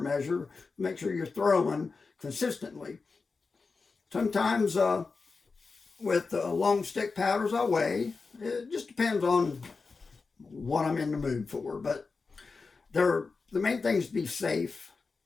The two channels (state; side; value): quieter; right; 4.4 dB